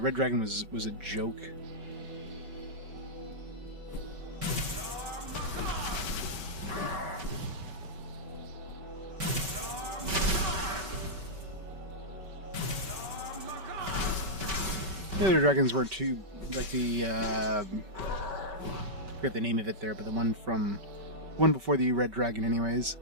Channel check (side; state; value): left; late; 5.2 ms